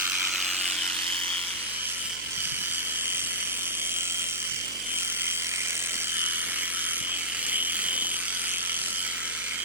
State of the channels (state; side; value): noise; right; hum, 19 dB below the sound